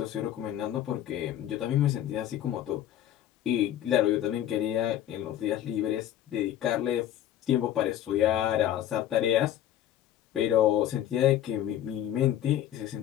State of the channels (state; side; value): quieter; right; 11.6 dB